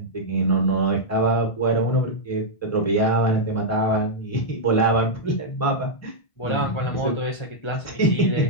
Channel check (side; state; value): right; late; 1.5 ms